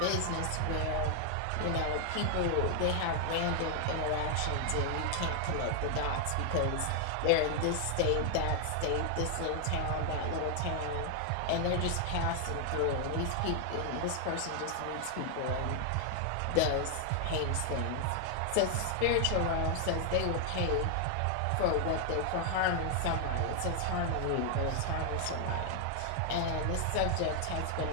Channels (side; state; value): both; different; correlation 0.00